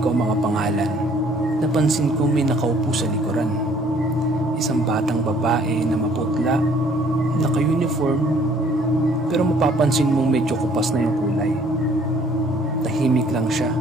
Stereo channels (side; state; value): both; normal; correlation 0.59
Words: ang mga pangalan, napansin ko may nakaupo sa likuran. Isang batang babae na maputla, naka-uniform, pero mapapansin mong medyo kupas na yung kulay. Tahimik lang siya